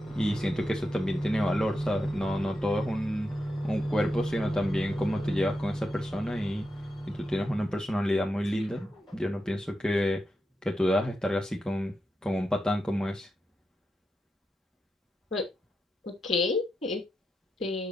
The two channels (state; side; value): normal; both; correlation 0.87